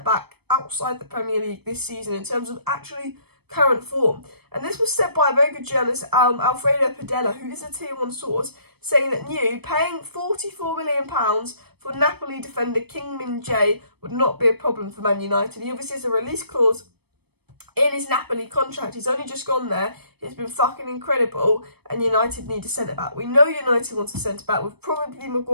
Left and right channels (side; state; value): left; late; 0.97 ms